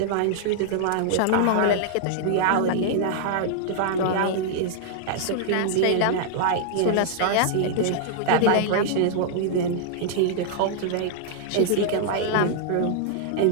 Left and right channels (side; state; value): both; different; correlation -0.01